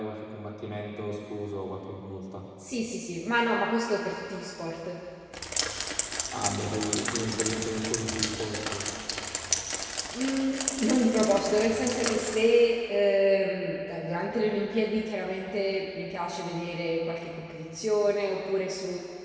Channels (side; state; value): both; identical; correlation 1.00